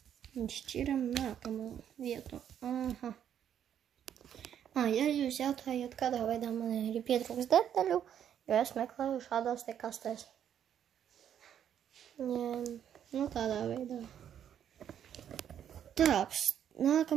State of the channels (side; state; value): left; quieter; 9.5 dB